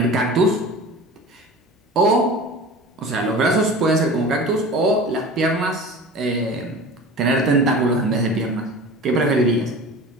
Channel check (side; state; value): both; normal; correlation 0.37